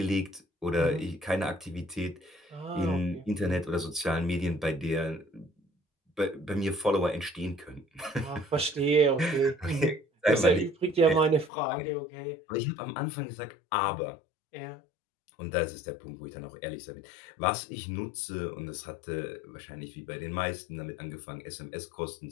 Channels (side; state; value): right; drops out; at 11.5 s